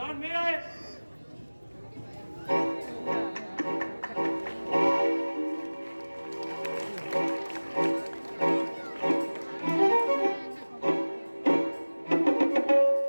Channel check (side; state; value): both; inverted; correlation -1.00